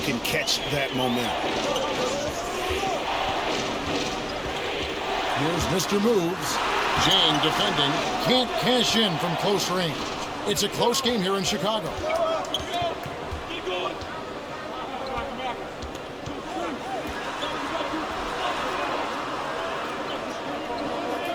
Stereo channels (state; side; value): identical; both; correlation 1.00